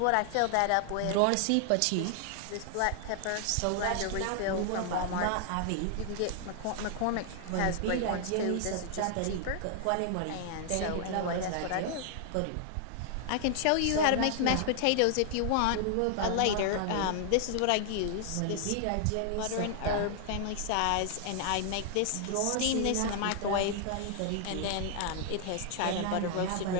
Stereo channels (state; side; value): different; both; correlation 0.00